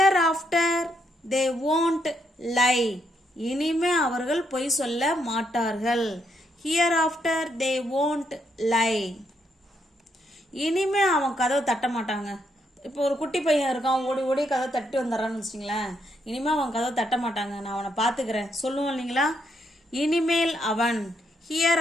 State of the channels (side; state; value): both; normal; correlation 0.76